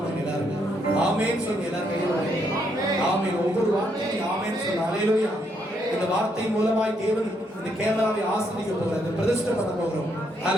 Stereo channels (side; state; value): both; normal; correlation 0.75